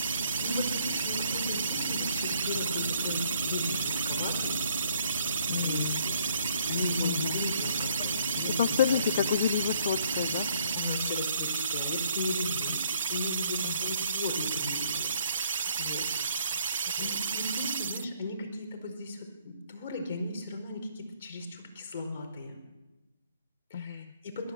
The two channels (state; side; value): inverted; both; correlation -0.65